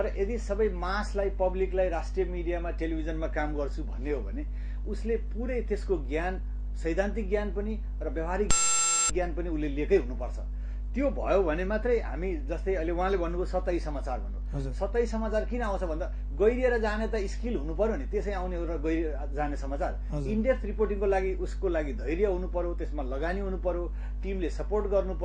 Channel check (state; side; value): identical; both; correlation 1.00